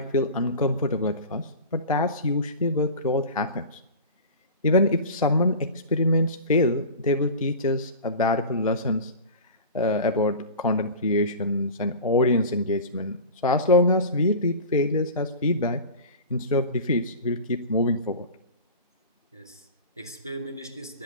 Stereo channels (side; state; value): both; inverted; correlation -0.33